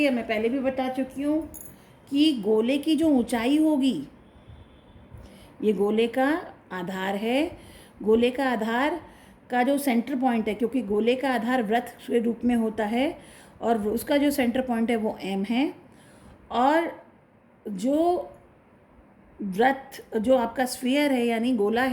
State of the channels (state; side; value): identical; both; correlation 1.00